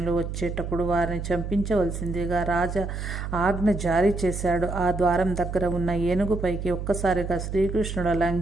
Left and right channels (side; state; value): right; noise; hum, 5 dB below the sound